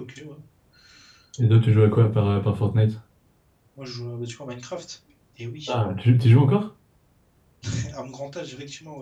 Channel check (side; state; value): both; identical; correlation 1.00